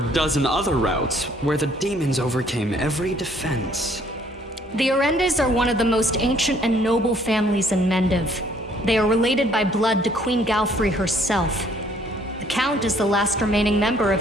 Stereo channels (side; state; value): both; normal; correlation 0.62